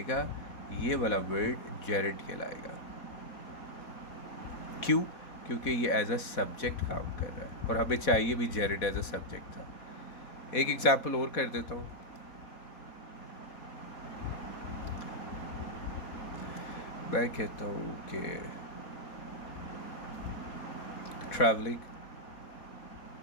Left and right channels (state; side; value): late; right; 4.1 ms